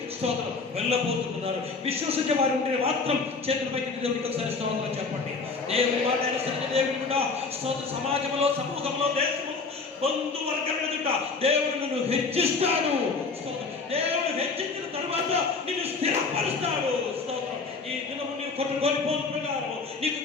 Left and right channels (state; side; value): quieter; right; 4.3 dB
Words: స్తోత్రం వెళ్ళబోతున్నారు. విశ్వసించే వారు ఉంటే మాత్రం చేతుల పైకి దేవునికి ఒకసారి స్తోత్రం చెప్పండి. దేవుని మాట అనుసరించి దేవుని కూడా స్తోత్ర సమాజంలో సమూహంలో దేశంలో బంధువర్గం ఎదుట దేవుడు నిన్ను హెచ్చిస్తాడు. దేవుడు హెచ్చించిన తర్వాత నిన్ను స్థిరపరుస్తాడు. స్తోత్రం. ఈ దినము నీవు కోల్పోయిన ప్రకారం నీకు